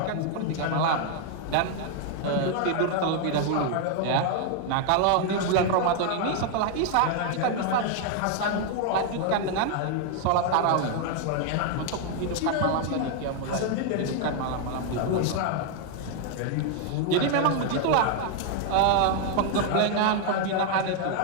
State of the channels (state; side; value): different; both; correlation 0.00